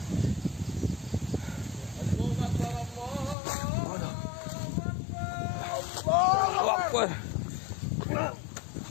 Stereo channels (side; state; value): right; drops out; at 3.4 s